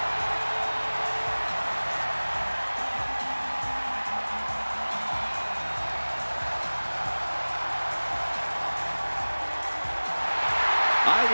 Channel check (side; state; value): both; inverted; correlation -1.00